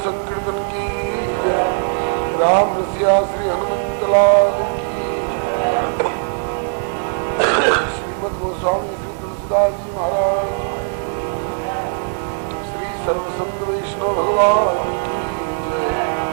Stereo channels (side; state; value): left; silent; digital silence